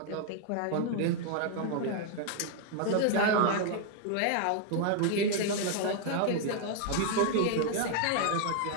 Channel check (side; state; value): both; different; correlation 0.00